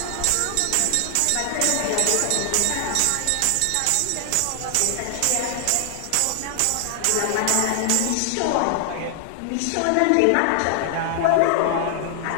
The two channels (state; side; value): different; both; correlation 0.00